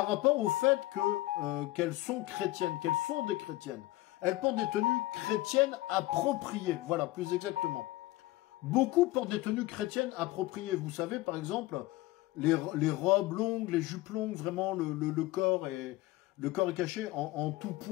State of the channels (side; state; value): right; quieter; 18.0 dB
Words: rapport au fait qu'elles sont chrétiennes, qu'elles sont des chrétiennes. Elles portent des tenues chrétiennes appropriées, voilà, plus exactement. Beaucoup portent des tenues chrétiennes appropriées. Vous savez, par exemple, les robes longues, les jupes longues, vraiment le corps est caché en tout